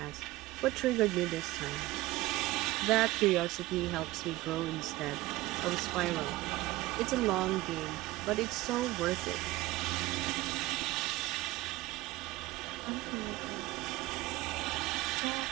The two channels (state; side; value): quieter; left; 18.4 dB